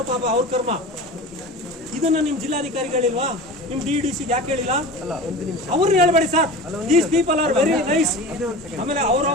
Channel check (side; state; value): both; normal; correlation 0.34